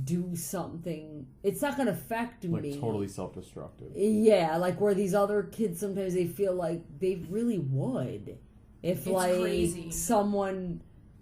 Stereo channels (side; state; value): both; identical; correlation 1.00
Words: do something. It's not gonna affect me. Totally self-destructive. Yeah, where these other kids sometimes they feel like they really would, if crazy. Someone